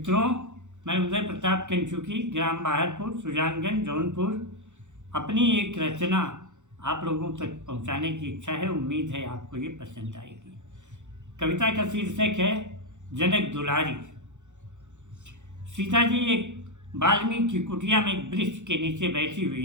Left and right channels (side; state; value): left; late; 0.84 ms